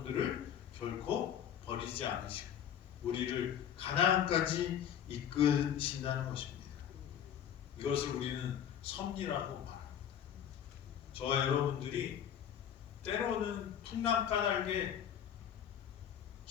결코 버리지 않으시고 우리를 가나안까지 이끄신다는 것입니다. 이것을 우리는 섭리라고 말합니다. 저와 여러분들이 때로는 풍랑 까닭에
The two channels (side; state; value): right; quieter; 9.3 dB